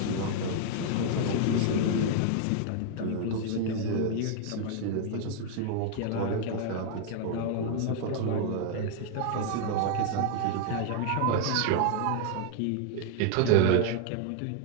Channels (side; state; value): both; different; correlation 0.00